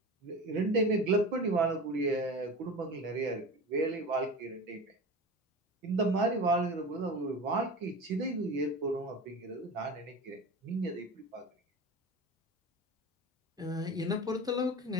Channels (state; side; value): normal; both; correlation 0.31